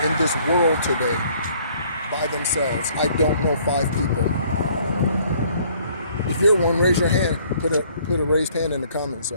in this world today by themselves. I don't know 5 people. If you're one, raise your hand. Put a raised hand in the comment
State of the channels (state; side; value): inverted; both; correlation -0.60